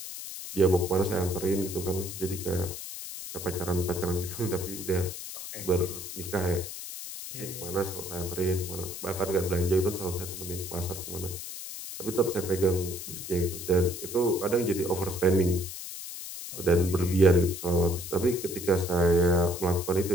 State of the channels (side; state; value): left; noise; hiss, 9 dB below the sound